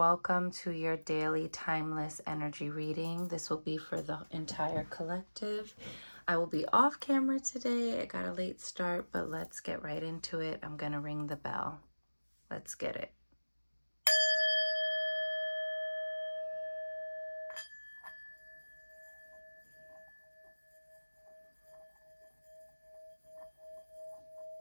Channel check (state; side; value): inverted; both; correlation -1.00